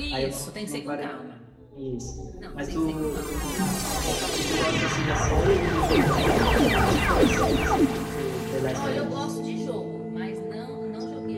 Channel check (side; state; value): both; identical; correlation 1.00